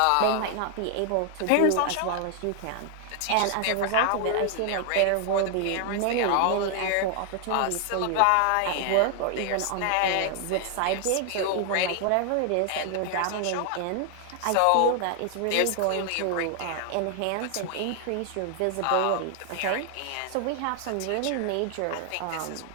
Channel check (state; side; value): different; both; correlation 0.00